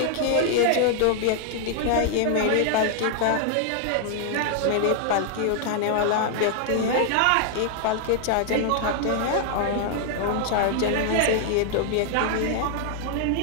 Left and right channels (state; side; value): different; both; correlation 0.00